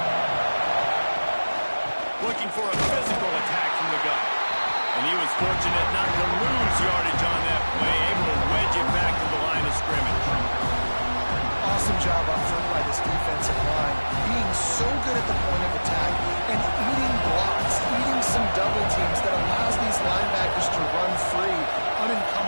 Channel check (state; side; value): inverted; both; correlation -1.00